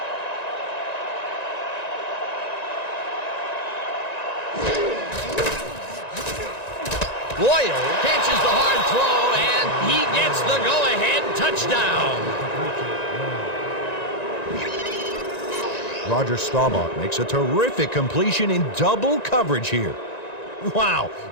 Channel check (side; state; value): right; late; 1.9 ms